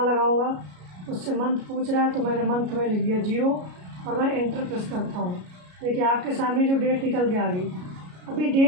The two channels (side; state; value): left; late; 33 ms